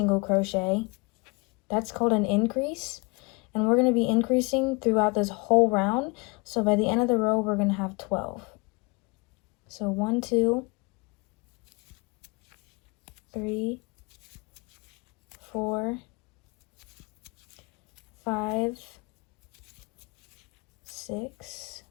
crochet. That's called an increase. And we're going to be increasing throughout this whole round. So by the end of the row, we're going to have 12. So 1, 2, 3, 4, 5, 6,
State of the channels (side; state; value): right; quieter; 28.5 dB